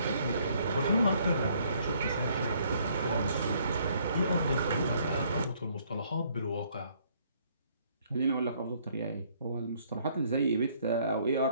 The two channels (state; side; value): inverted; both; correlation -0.65